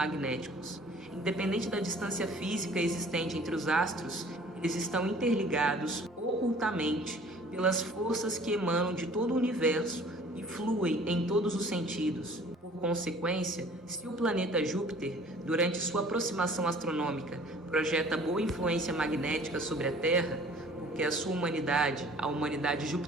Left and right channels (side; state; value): both; normal; correlation 0.51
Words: Independente da distância física existente entre os astros, eles estão interligados ocultamente pelas forças que emanam de todo o universo e fluem em todos os sentidos. Por consequência, se o planeta Júpiter, durante sua aproximação astronômica, projeta boa influência magnética sobre a Terra, porque a sua humanidade, a humanidade